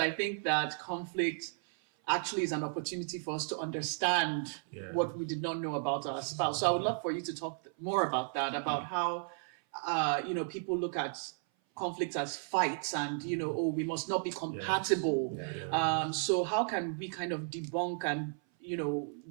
think that conflict actually is an opportunity for us to understand what we did not know about our spouse. So I would love for you to talk more about that, about how people look at conflicts as fights and, we must not be compatible. So how can we kind of debunk and,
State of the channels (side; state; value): left; silent; 55 dB below the other